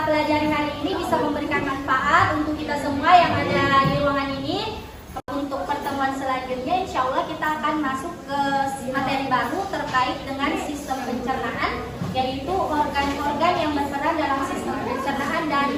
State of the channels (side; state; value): both; identical; correlation 1.00